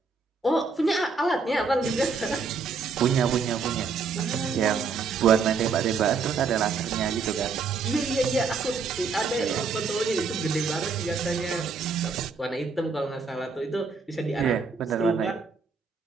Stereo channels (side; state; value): left; quieter; 4.8 dB